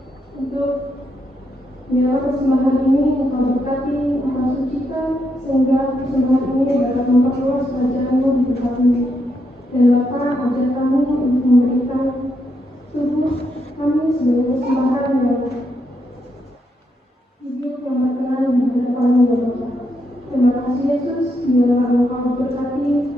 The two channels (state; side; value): normal; both; correlation 0.80